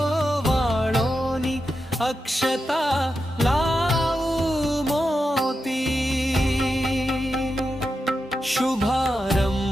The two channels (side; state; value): both; normal; correlation 0.88